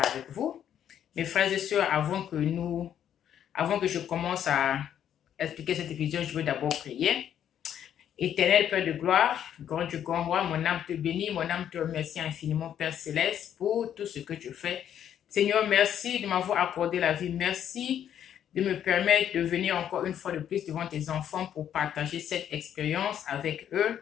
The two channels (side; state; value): right; quieter; 9.8 dB